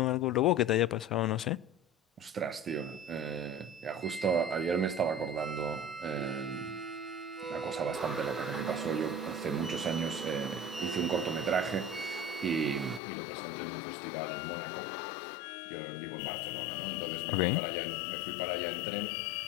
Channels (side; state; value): right; drops out; at 13.0 s